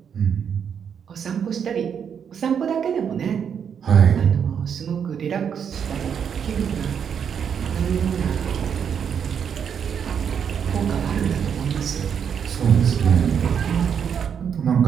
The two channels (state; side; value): quieter; left; 7.6 dB